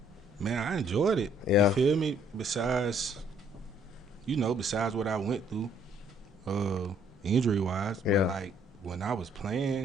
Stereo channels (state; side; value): normal; both; correlation 0.64